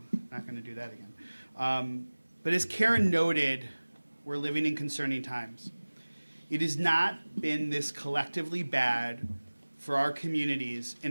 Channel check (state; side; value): inverted; both; correlation -1.00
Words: Not going to do that again. But as Karen noted, we're living in concerning times. It has not been this collectively bad for our communities